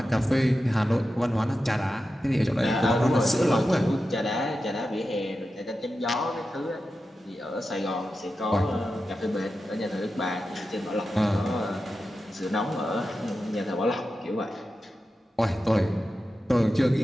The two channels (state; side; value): normal; both; correlation 0.91